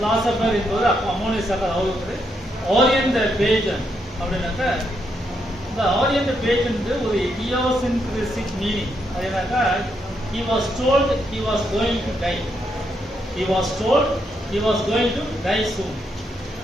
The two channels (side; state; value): both; normal; correlation 0.79